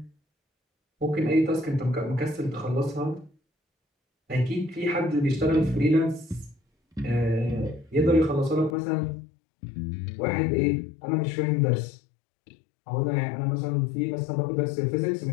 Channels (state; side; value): drops out; right; at 8.8 s